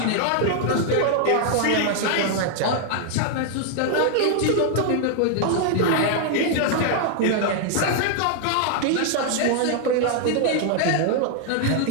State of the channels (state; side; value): different; both; correlation 0.00